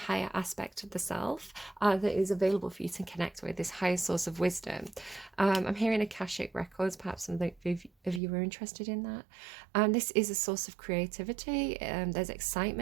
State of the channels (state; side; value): drops out; left; at 8.2 s